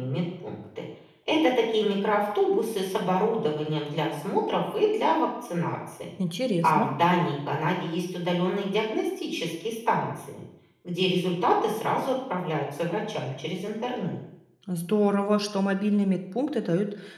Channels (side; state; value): both; identical; correlation 1.00